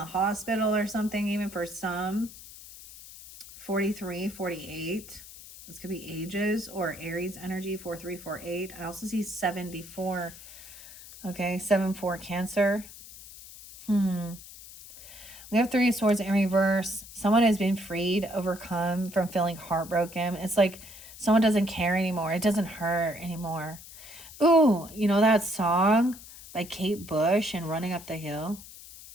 hospital or something, even for some. 43, 48. This could be ages or Aries energy, 4348. I also see 74. Okay, 7-4 Cancer. We have Three of Swords in reverse. Someone has been freed, overcome from feeling heartbroken. It's like someone doesn't care anymore. It doesn't hurt anymore. Ooh, you know that song by Kate Bush and Running Up the Hill?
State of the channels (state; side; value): noise; left; hiss, 17 dB below the sound